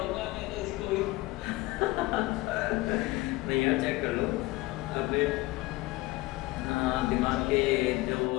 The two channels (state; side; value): quieter; right; 20.2 dB